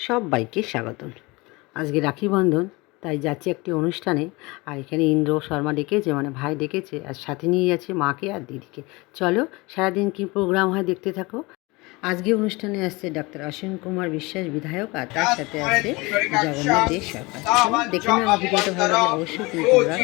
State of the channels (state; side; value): quieter; right; 24.2 dB